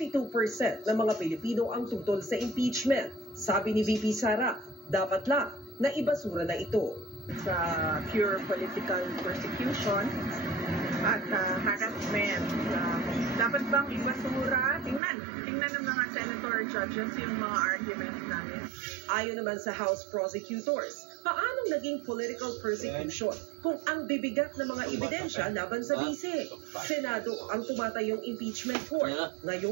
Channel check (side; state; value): left; drops out; at 15.0 s